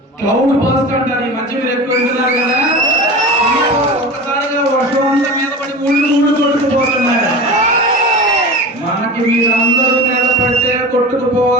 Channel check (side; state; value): both; normal; correlation 0.31